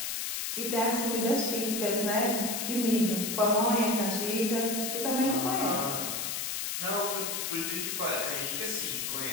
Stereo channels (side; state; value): left; noise; hiss, 2 dB below the sound